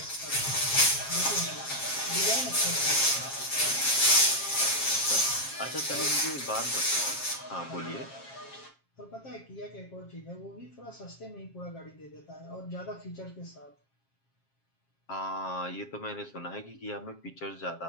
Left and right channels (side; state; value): right; late; 7.4 ms